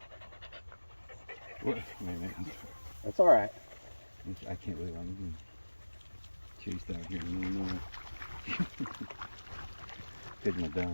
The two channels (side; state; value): both; inverted; correlation -1.00